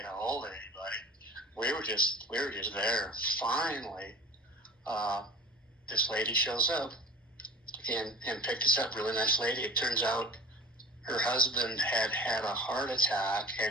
a hold of anybody. We were just there. Finally, this lady shows up and picked us up. Really nice lady. It turns out her husband had had a heart attack,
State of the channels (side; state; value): both; normal; correlation 0.41